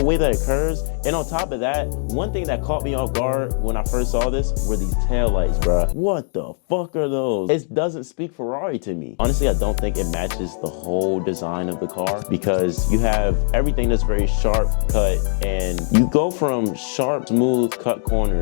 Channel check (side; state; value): right; silent; 57 dB below the other